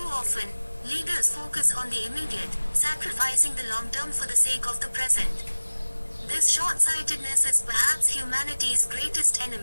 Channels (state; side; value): inverted; both; correlation -1.00